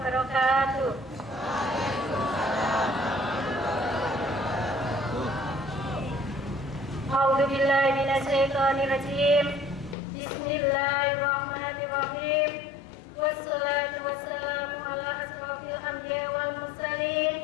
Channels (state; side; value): drops out; right; at 10.0 s